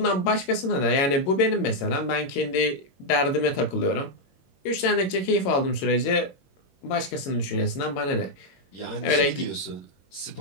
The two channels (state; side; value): late; right; 21 ms